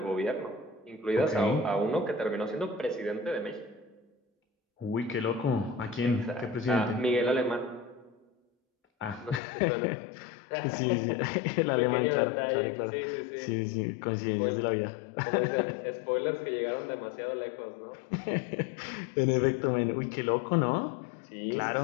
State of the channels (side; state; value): right; drops out; at 9.4 s